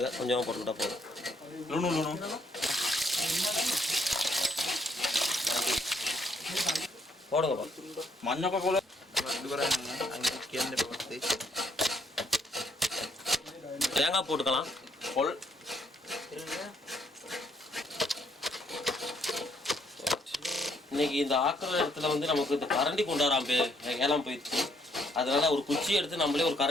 கொஞ்சமாக போட்டுக்கிட்டா போதும். ලුණු ලුණු. போடுங்கப்பா. මඤ්ඤොක කොළ අඩු කරන්න අංකල් කියන්න එපා. தேங்காய் போட்டுக்கலாம். පොල් இன்னைக்கு இந்த ஆக்கிற இடத்துல வந்து நமக்கு இந்த கரண்டி கொண்டாடாம ஏலாம் போயிடுச்சு. அதனால ஒரு குச்சி எடுத்து நம்மளே ஒரு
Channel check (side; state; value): both; normal; correlation 0.70